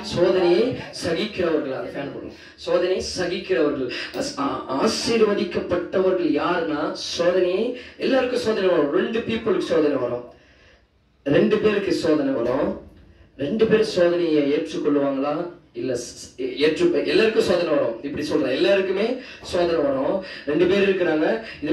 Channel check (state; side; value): identical; both; correlation 1.00